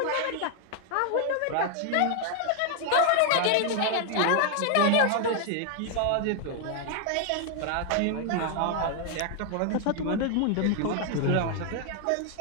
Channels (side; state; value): both; different; correlation 0.00